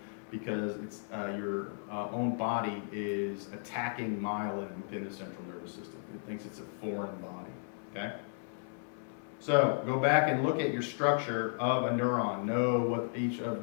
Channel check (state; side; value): silent; right; 55 dB below the other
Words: because it's your own body is attacking myelin within the central nervous system. It thinks it's a foreign body, okay? So go back and look at your structure of a neuron. Know what each of